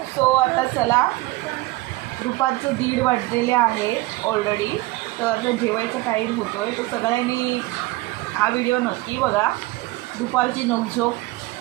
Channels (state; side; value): quieter; left; 20.5 dB